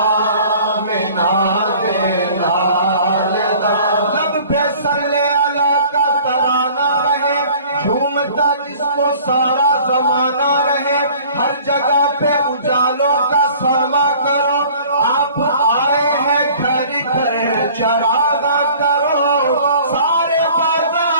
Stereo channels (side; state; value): both; inverted; correlation -0.49